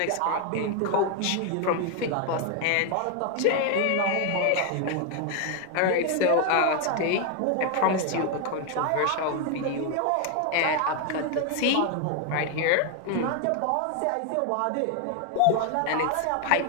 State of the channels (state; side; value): different; both; correlation 0.01